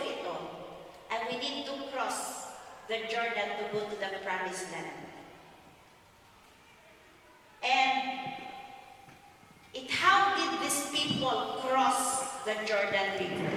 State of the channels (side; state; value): both; identical; correlation 1.00